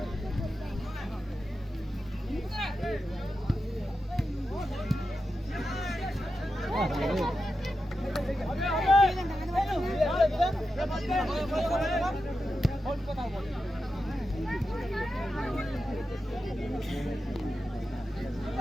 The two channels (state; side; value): normal; both; correlation 0.90